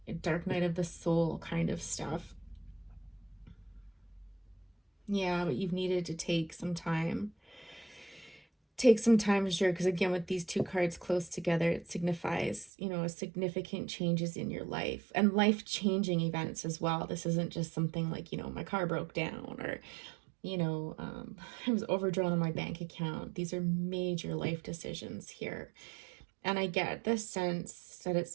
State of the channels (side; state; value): left; drops out; at 12.7 s